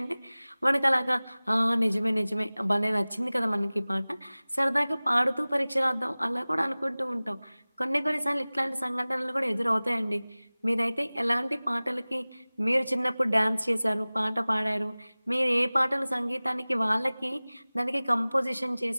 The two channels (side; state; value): both; inverted; correlation -0.99